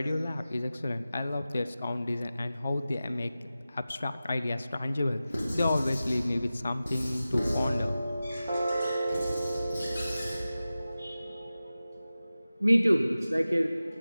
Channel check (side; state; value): both; inverted; correlation -0.95